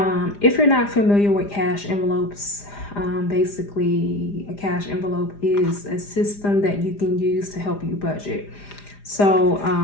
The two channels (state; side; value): late; right; 4.9 ms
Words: if you're not familiar with cash envelopes, basically a cash envelope is a system that you can use to help you budget. So